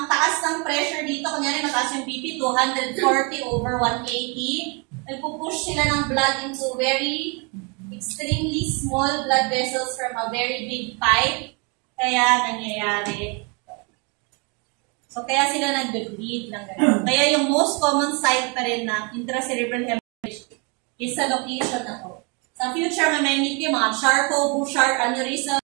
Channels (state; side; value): quieter; left; 32.6 dB